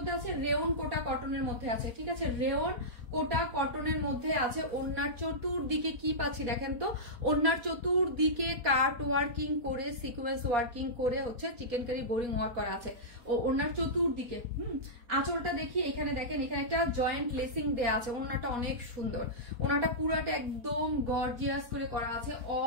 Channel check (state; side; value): late; left; 4.2 ms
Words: আছে, রেয়ন কোটা কটনের মধ্যে আছে, ঠিক আছে, রেয়ন কোটা কটনের মধ্যে আছে। ওড়নার চতুর্দিকে কি পাচ্ছি দেখেন তো, ওড়নার চতুর্দিকে কাট ওয়ার্কিং করে সিকোয়েন্স ওয়ার্কিং করে হচ্ছে চিকেন কারি বোরিং ওয়ার্ক করা আছে ও ওড়নার চতুর্দিকে। আঁচলটা দেখি, এখানে দেখেন এখানে একটা জয়েন্ট লেসিং দেয়া আছে। ওড়নাটা অনেক সুন্দর, ওড়নাটা পুরাটা একদম গর্জিয়াস করে করা আছে।